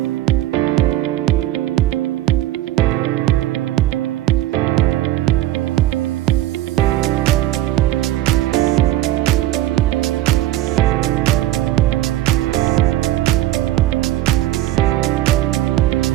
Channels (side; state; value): left; quieter; 14.5 dB